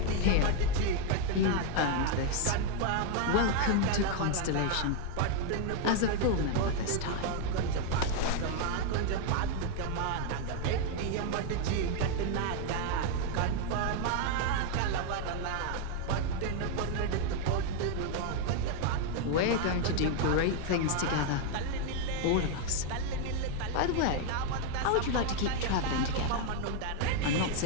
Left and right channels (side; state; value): both; different; correlation 0.01